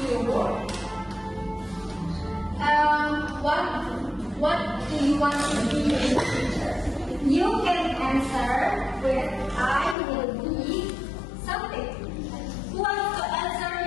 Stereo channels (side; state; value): right; drops out; at 10.0 s